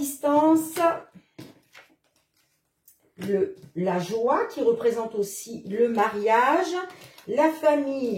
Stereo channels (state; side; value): identical; both; correlation 1.00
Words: la joie, qui représente aussi le mariage, la